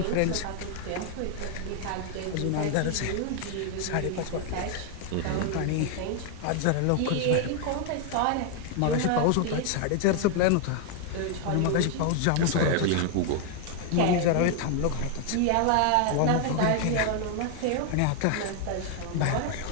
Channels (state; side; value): different; both; correlation 0.00